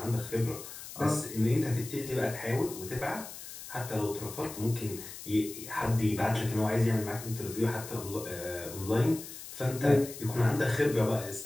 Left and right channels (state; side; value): noise; left; hiss, 12 dB below the sound